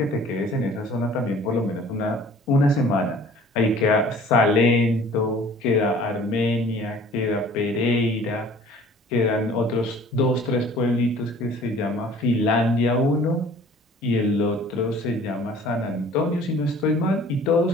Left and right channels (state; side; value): normal; both; correlation 0.50